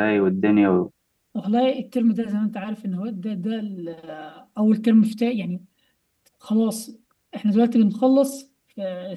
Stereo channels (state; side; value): identical; both; correlation 1.00